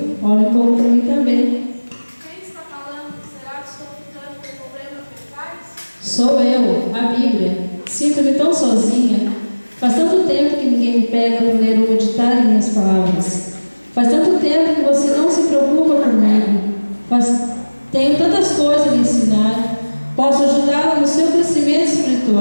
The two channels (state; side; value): inverted; both; correlation -1.00